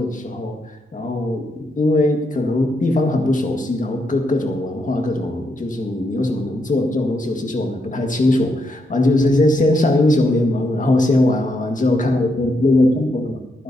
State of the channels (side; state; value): both; normal; correlation 0.80